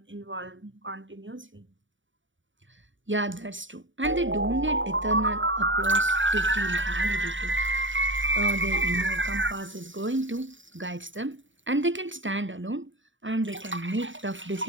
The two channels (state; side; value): late; left; 0.56 ms